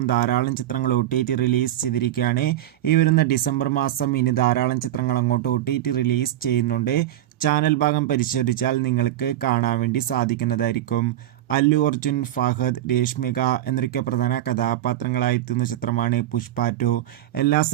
ധാരാളം ചിത്രങ്ങൾ OTT റിലീസ് ചെയ്തിരിക്കുകയാണ്. ഈ വരുന്ന ഡിസംബർ മാസം ഇനി ധാരാളം ചിത്രങ്ങൾ അങ്ങോട്ട് OTT റിലീസ് ചെയ്യുന്നുണ്ട്. ചാനൽ ഭാഗം പരിശോധിച്ചാൽ നിങ്ങൾക്ക് കാണാൻ വേണ്ടി സാധിക്കുന്നതായിരിക്കും. അല്ലു അർജുൻ, ഫഹദ്, രേഷ്മിക എന്നൊക്കെ പ്രധാന കഥാപാത്രങ്ങളായി എത്തുന്ന ചിത്രമാണ് പുഷ്പ 2. എല്ലാ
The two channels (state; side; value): quieter; left; 13.4 dB